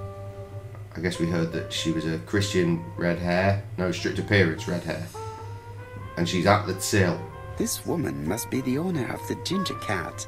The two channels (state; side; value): identical; both; correlation 1.00